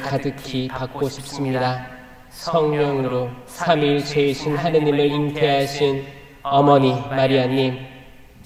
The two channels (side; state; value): both; identical; correlation 1.00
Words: 가득히 받고 싶습니다. 성령으로 삼위일체이신 하느님을 잉태하신 어머니 마리아님,